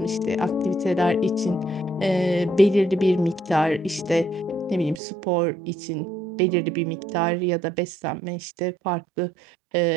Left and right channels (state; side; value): drops out; left; at 5.0 s